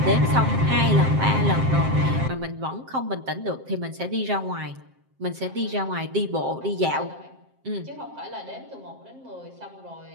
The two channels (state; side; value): late; left; 7.6 ms